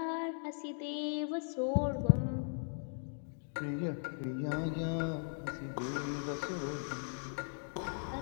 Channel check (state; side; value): silent; right; digital silence